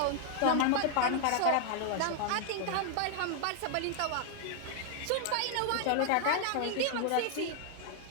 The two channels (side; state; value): both; different; correlation 0.00